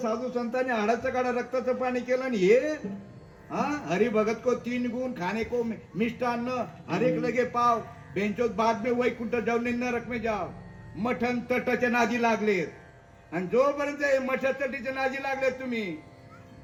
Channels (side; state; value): both; identical; correlation 1.00